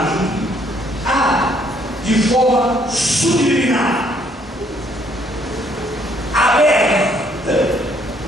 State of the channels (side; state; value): both; normal; correlation 0.66